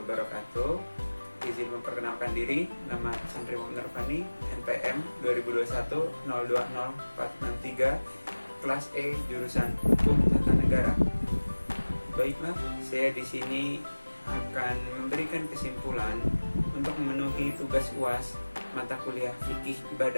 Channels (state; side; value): inverted; both; correlation -1.00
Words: wabarakatuh. Izin memperkenalkan diri, nama Santri Muhammad Nurfani, NPM 2021-020463, kelas E, jurusan Hukum Tata Negara. Baiklah, saya di sini akan memberikan kesimpulan untuk memenuhi tugas UAS mata kuliah fikih